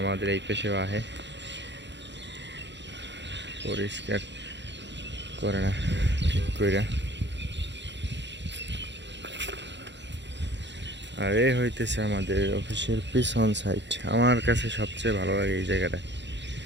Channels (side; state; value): left; late; 0.52 ms